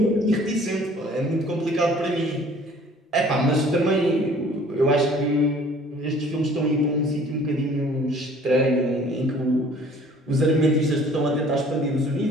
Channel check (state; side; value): normal; both; correlation 0.53